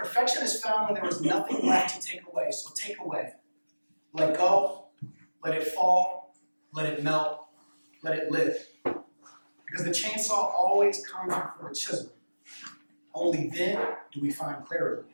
is found when there is nothing left to take away. So take away. Let go. Let it fall. Let it melt. Let it live. Because the chainsaw always comes before the chisel. Only then do we find clarity.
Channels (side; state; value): both; inverted; correlation -1.00